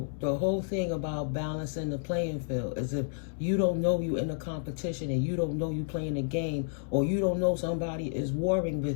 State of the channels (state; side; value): silent; right; digital silence